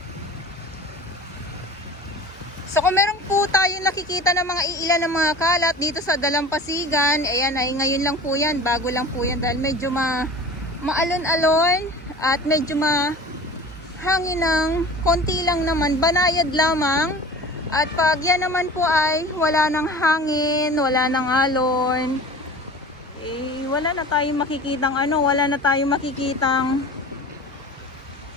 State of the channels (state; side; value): normal; both; correlation 0.39